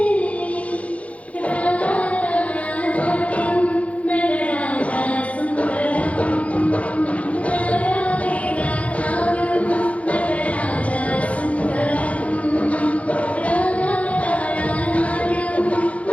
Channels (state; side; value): late; right; 0.065 ms